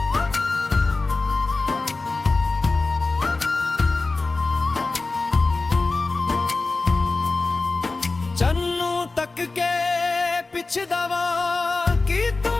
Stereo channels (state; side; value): quieter; right; 3.6 dB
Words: ਚੰਨੂ ਤੱਕ ਕੇ ਪਿਛਦਾ ਵਾਂ, ਕੀ ਤੂੰ